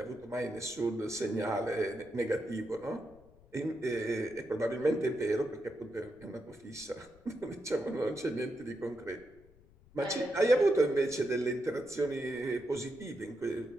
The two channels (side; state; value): left; noise; rumble, 26 dB below the sound